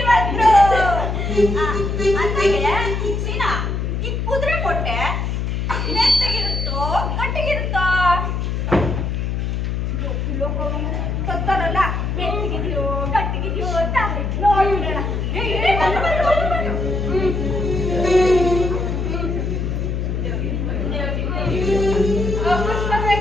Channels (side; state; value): left; noise; hum, 1 dB below the sound